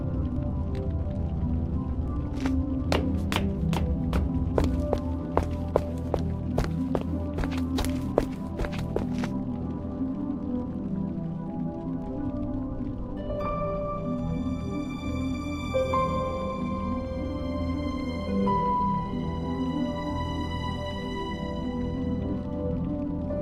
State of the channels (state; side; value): identical; both; correlation 1.00